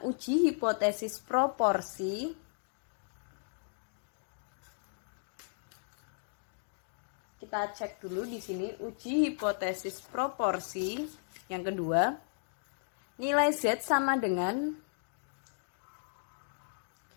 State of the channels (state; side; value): silent; right; digital silence